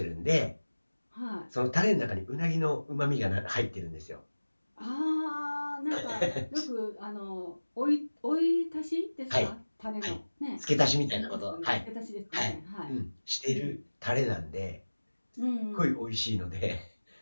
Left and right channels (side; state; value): both; inverted; correlation -1.00